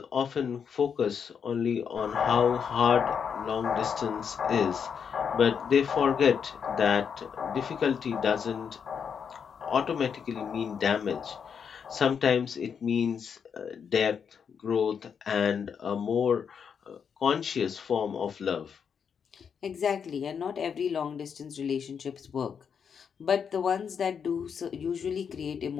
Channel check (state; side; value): quieter; right; 7.0 dB